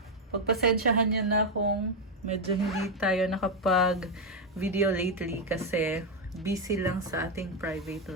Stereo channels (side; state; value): both; normal; correlation 0.04